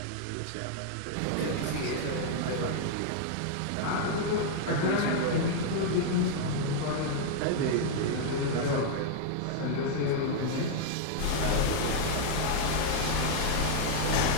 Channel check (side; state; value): both; different; correlation -0.01